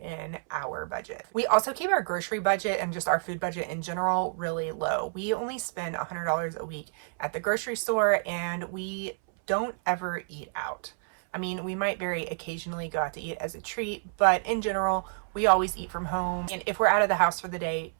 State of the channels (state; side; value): silent; left; 59 dB below the other